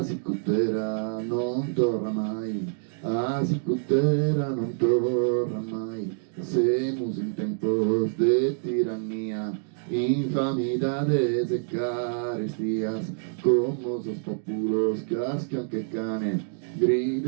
sicutera non torna mai, a sicutera non torna mai. Semos em tempos de tiranía, infamidades e carestias, como os populos cascan que cane,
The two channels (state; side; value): silent; left; digital silence